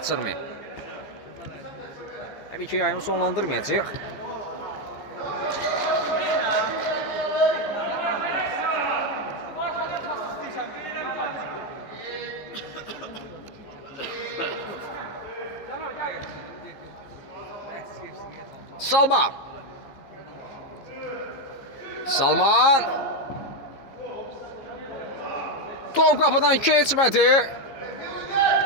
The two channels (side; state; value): right; late; 15 ms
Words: Təbii ki yayını sonlandırmayacaq. Salman. Salman. Top qapıdan keçmədi.